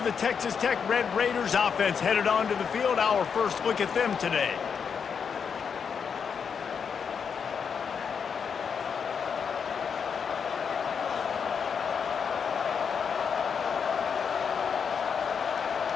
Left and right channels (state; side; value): quieter; right; 6.6 dB